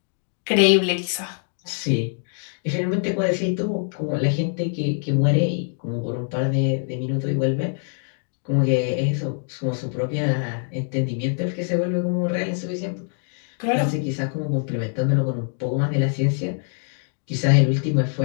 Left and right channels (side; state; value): right; silent; 63 dB below the other